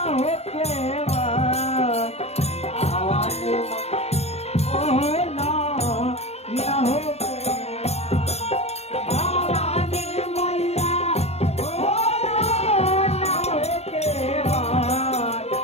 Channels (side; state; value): right; late; 0.31 ms